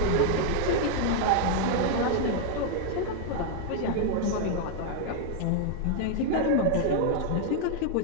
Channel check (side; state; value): both; different; correlation 0.00